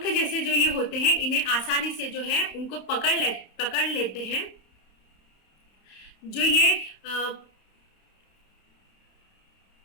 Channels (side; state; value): right; late; 31 ms